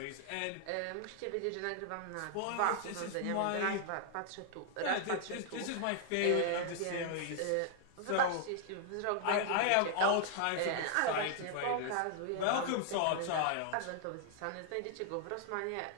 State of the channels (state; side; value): different; both; correlation 0.00